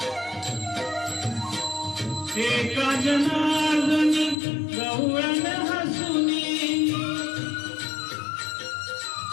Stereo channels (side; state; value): right; drops out; at 4.4 s